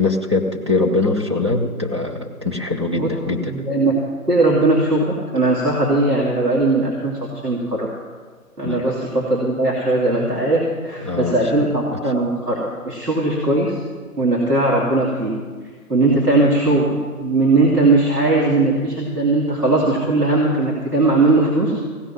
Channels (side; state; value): both; normal; correlation 0.24